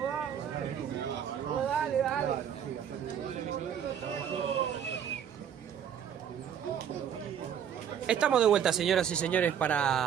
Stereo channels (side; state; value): left; quieter; 8.7 dB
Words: vamos. Oh, dale, dale. Estamos de vuelta, señoras y señores,